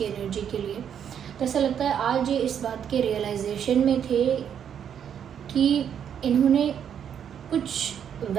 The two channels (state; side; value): quieter; left; 8.6 dB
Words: एनर्जी के लिए। तो ऐसा लगता है आज ये इस बात के रियलाइजेशन में थे कि इन्होंने कुछ